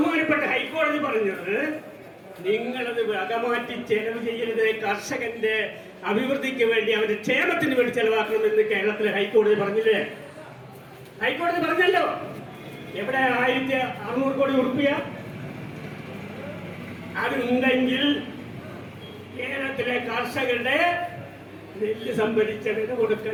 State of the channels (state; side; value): identical; both; correlation 1.00